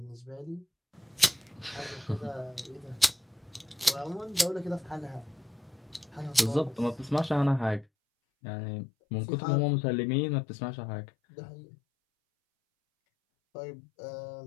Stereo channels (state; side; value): drops out; right; at 7.9 s